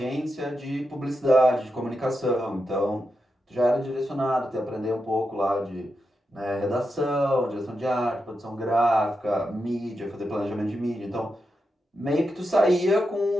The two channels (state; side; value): normal; both; correlation 0.87